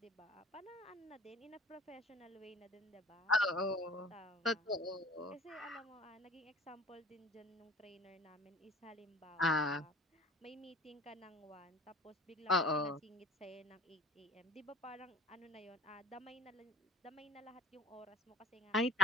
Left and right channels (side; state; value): both; normal; correlation 0.47